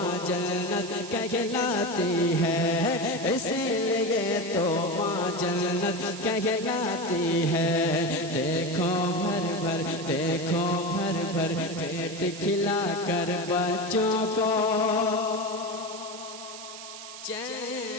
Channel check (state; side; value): noise; right; hiss, 12 dB below the sound